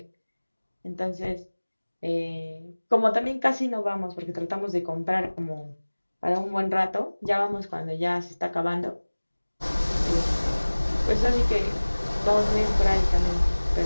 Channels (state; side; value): inverted; both; correlation -1.00